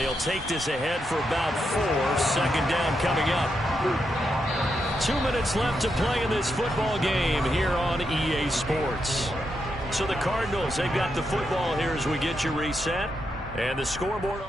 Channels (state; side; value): normal; both; correlation 0.83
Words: take this ahead for about 4. Second down coming up. 2 minutes left to play in this football game here on EA Sports. So the Cardinals, they've got the football here as we get you reset. And the scoreboard